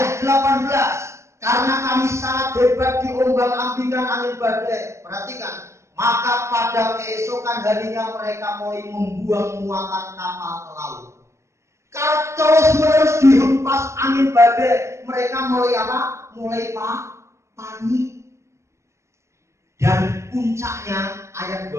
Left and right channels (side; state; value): left; late; 0.14 ms